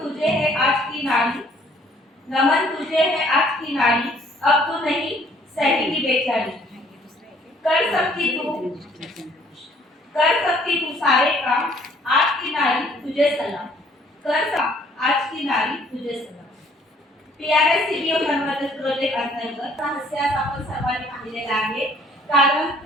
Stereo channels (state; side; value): normal; both; correlation 0.60